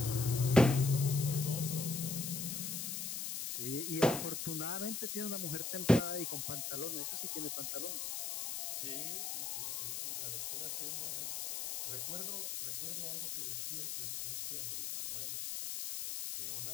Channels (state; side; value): noise; left; hiss, 3 dB below the sound